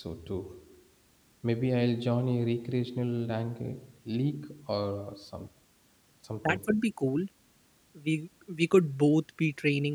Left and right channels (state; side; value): identical; both; correlation 1.00